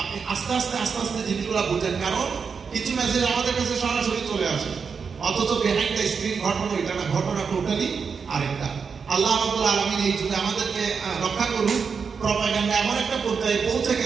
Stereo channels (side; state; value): left; quieter; 5.8 dB